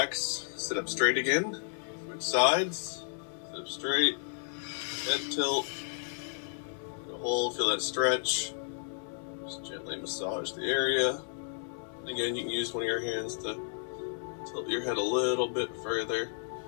sit up straight again, switch sides, sit up straight, head tilt, hold, feel that stretch. Just gently massage the area. Again, you can use one of your hands to tilt your head a little bit further.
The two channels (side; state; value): right; silent; digital silence